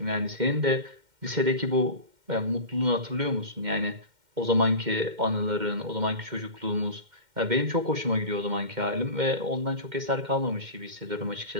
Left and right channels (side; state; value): left; late; 2.1 ms